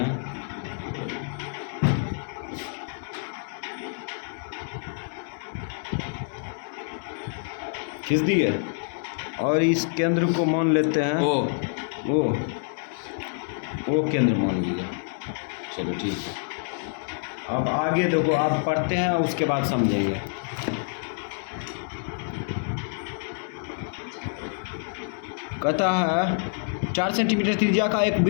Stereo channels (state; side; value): silent; right; 60 dB below the other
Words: खींच दिए और इस केंद्र को मान लेते हैं वो केंद्र मान लिया। चलो ठीक है। अब आगे देखो, आप पढ़ते हैं उसके बाद समझेंगे। कहता है 4 सेंटीमीटर त्रिज्या का एक